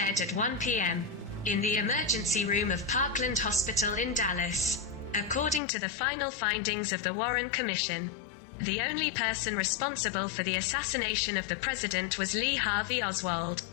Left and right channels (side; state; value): right; drops out; at 5.6 s